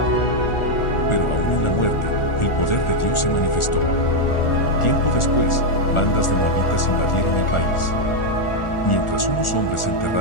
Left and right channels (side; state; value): right; late; 1.4 ms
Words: Pero aún en la muerte, el poder de Dios se manifestó. Tiempo después, bandas de moabitas invadieron el país. Mientras unos hombres